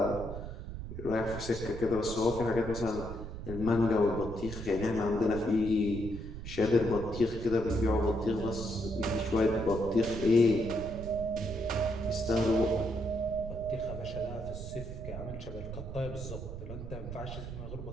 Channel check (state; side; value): noise; right; rumble, 8 dB below the sound